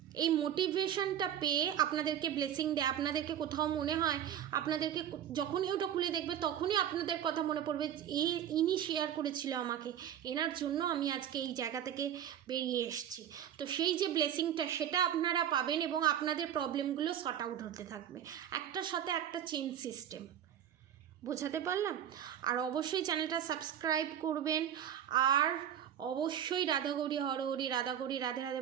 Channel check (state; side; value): quieter; left; 10.0 dB